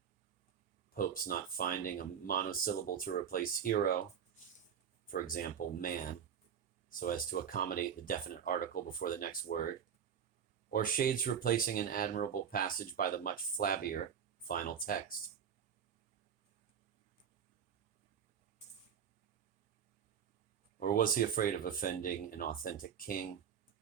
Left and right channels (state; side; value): quieter; left; 7.9 dB